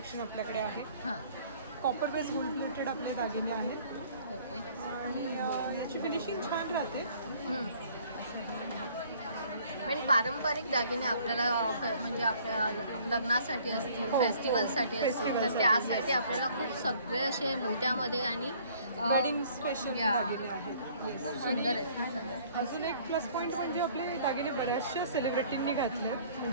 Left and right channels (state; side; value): inverted; both; correlation -0.57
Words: आपल्याकडे आहे. हां. कॉपर बेस गोल्ड प्लेटेड आपले दागिने आहेत ओके. आणि याची फिनिशिंग छान राहते. म्हणजे पारंपरिक दागिने आपल्याला म्हणजे आपल्या लग्नासाठी असतील, फेस्टिवलसाठी असतील, तर त्यासाठी आपल्याला खूप सगळे असे मोत्यामध्ये आणि वेडिंग स्पेशल या. दागिने आहेत. खूप सुंदर आहेत. अजून एक प्लस पॉईंट म्हणजे आपले दागिने बऱ्याचशा सेलिब्रिटींनी घातले.